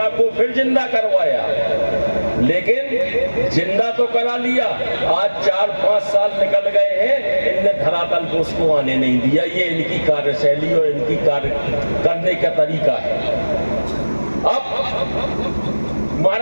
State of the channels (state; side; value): inverted; both; correlation -1.00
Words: को फिर जिंदा करवाया, लेकिन जिंदा तो करा लिया। आज 4-5 साल निकल गए हैं, इनने धरातल को उसको आने नहीं दिया। ये इनकी कार्यशैली और इनकी कार्य करने का तरीका है। अब